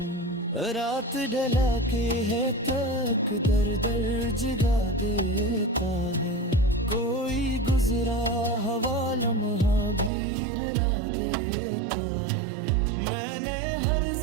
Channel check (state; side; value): drops out; left; at 10.1 s